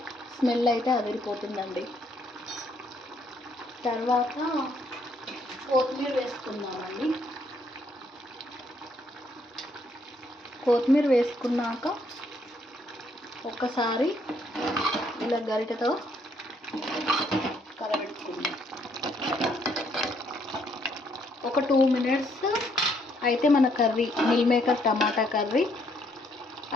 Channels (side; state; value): both; normal; correlation 0.70